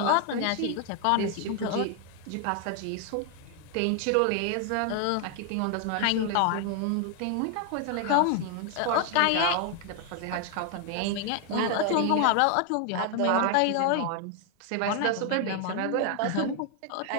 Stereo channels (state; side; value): different; both; correlation 0.00